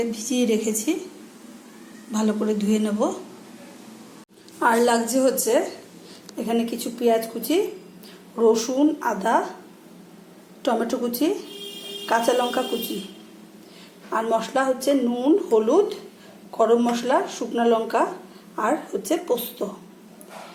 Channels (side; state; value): both; identical; correlation 1.00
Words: ভিজিয়ে রেখেছি, ভালো করে ধুয়ে নেব। আর লাগছে হচ্ছে এখানে কিছু পেঁয়াজ কুচি, রসুন, আদা, টমেটো কুচি, কাঁচা লঙ্কা কুচি। আর মশলা হচ্ছে নুন, হলুদ, গরম মশলা, শুকনো লঙ্কা, আর হচ্ছে পোস্ত।